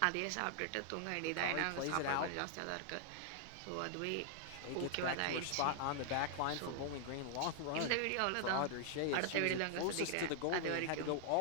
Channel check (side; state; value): both; different; correlation 0.00